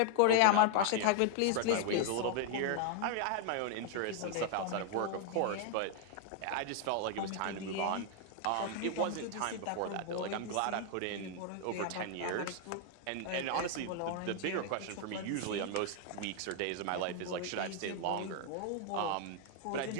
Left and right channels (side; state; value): both; different; correlation 0.00